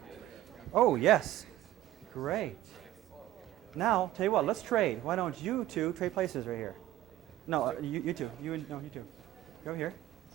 Oh, yes. Great. Now, tell you what, let's trade. Why don't you two trade places right here? No, you two. You two. Go here.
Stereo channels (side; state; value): left; quieter; 14.1 dB